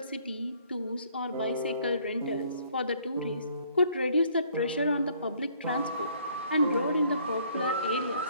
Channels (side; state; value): both; inverted; correlation -0.61